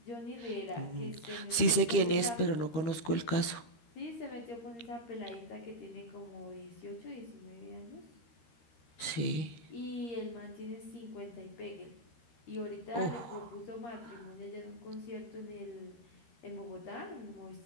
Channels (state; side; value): late; right; 13 ms